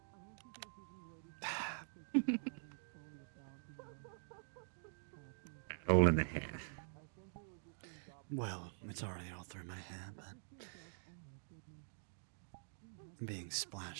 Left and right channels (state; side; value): silent; left; digital silence